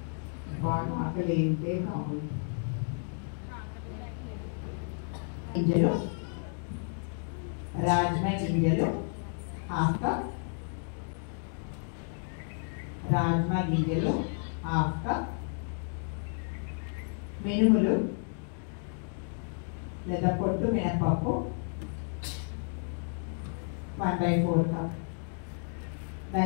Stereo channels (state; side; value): silent; right; 55 dB below the other